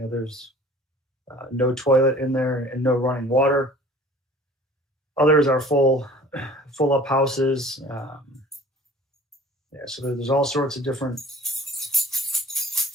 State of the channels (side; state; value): both; normal; correlation 0.48